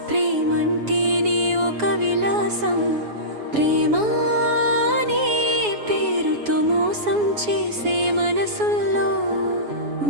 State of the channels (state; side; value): late; left; 7.1 ms